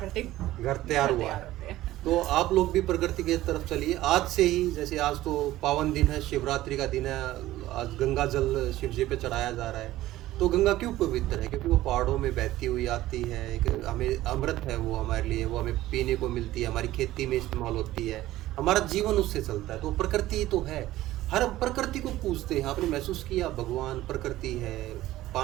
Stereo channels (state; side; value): quieter; left; 15.6 dB